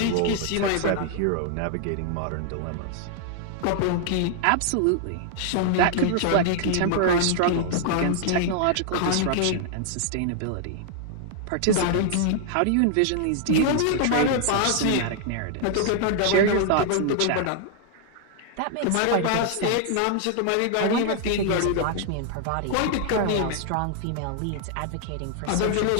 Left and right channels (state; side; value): different; both; correlation 0.00